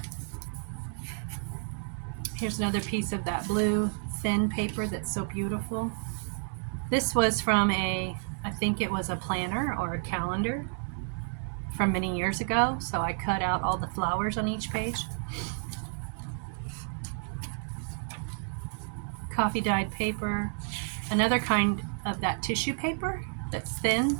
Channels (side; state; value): left; silent; 57 dB below the other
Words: Here's another piece of that blue thin paper that's so beautiful. This was from I think it was a planner or a calendar from many years ago. So I cut out all the flowers on each page. Coffee dyed paper. Another kind of that tissue paper that's thin,